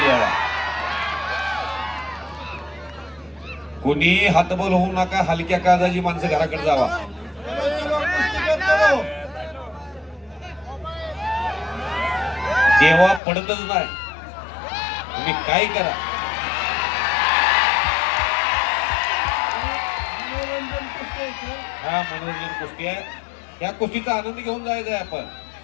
कोणी हातबल होऊ नका. हलक्या काळजाची माणसं घराकडे जावा. चलो चलो कुश्ती करते रहो. देवा पडतच नाही. तुम्ही काय करा. मनोरंजन कुस्ती आहे, सर. हा मनोरंजन कुस्ती आहे. या कुस्तीचा आनंद घेऊन जायचा आहे आपण.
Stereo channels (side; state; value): right; drops out; at 13.2 s